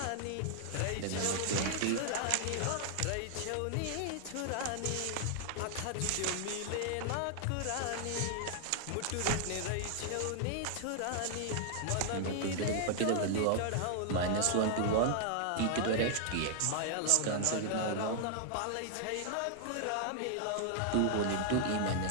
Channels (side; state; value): both; different; correlation 0.00